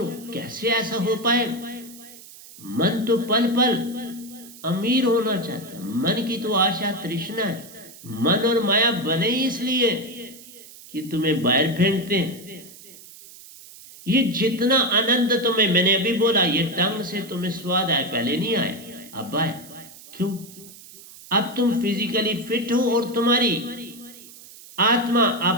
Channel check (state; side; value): noise; right; hiss, 19 dB below the sound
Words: कैसे ऐसा हो पाए। मन तो पल पल अमीर होना चाहता है, मन की तो आशा तृष्णा है। मन और माया बने इसलिए कि तुम्हें बाहर फेंकते हैं। ये जितना आनंद तुम्हें, मैंने अभी बोला, ये टंग से तुम्हें स्वाद आया, पहले नहीं आया, अब आया। क्यों? अब तुम फिजिकली फिट हो और तुम्हारी आत्मा,